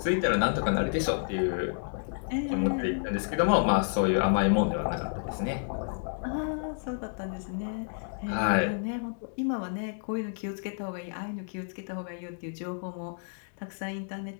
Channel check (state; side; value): silent; right; digital silence